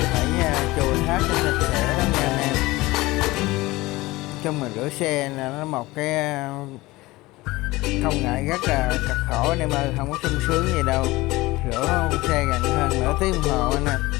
phải chùi hết cho sạch sẽ đó nha anh em. Trong mình rửa xe là nó một cái không ngại rất là cực khổ anh em ơi, không có sung sướng gì đâu. Rửa xe gần hơn nửa tiếng đồng hồ anh em,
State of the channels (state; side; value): quieter; right; 20.2 dB